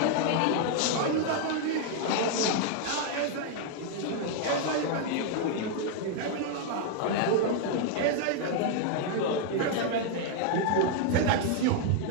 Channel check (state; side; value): different; both; correlation 0.00